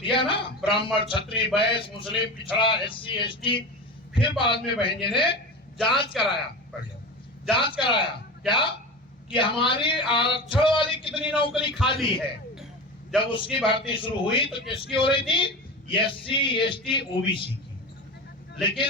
ना, ब्राह्मण क्षत्रिय वैश्य मुस्लिम पिछड़ा एससी एसटी। फिर बाद में बहन जी ने जांच कराया, जांच कराया क्या कि हमारी आरक्षण वाली कितनी नौकरी खाली है। जब उसकी भर्ती शुरू हुई तो किसकी हो रही थी? एससी एसटी ओबीसी की।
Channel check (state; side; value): normal; both; correlation 0.27